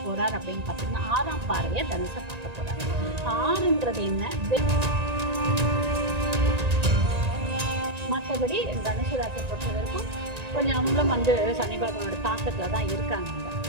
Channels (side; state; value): left; late; 1.9 ms